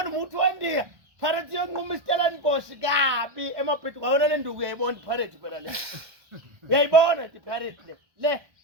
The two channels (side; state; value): left; late; 1.2 ms